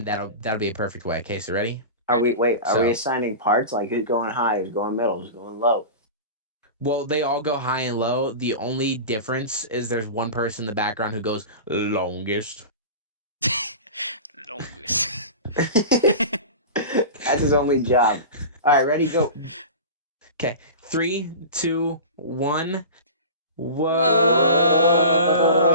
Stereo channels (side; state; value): both; inverted; correlation -0.32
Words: that'll be a perfect way. Okay, so ready? Are we assigning parts? Like who's going high, who's going middle, who's going low? Well, they all go high and low. The only difference is there's one person in the background who goes longest. Longest. That's his only job. All right, ready, go. Okay, 3, 2, 1. Whoa.